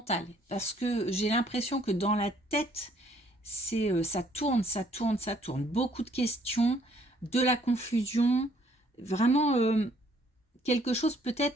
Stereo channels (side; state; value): both; normal; correlation 0.64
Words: Parce que j'ai l'impression que dans la tête, ça tourne, ça tourne, ça tourne. Beaucoup de questions, de la confusion, vraiment quelque chose,